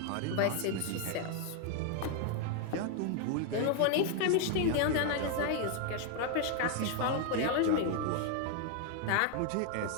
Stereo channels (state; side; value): different; both; correlation 0.01